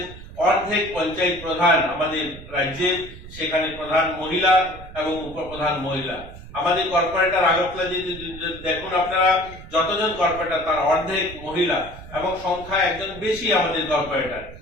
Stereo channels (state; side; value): noise; right; rumble, 15 dB below the sound